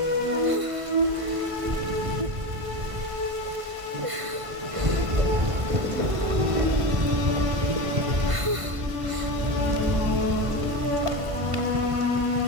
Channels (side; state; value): left; late; 1.5 ms